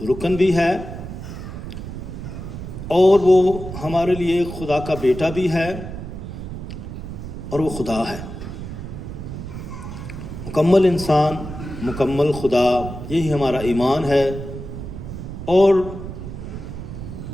رکن بھی ہے اور وہ ہمارے لیے خدا کا بیٹا بھی ہے اور وہ خدا ہے، مکمل انسان، مکمل خدا، یہی ہمارا ایمان ہے۔ اور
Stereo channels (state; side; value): noise; right; rumble, 9 dB below the sound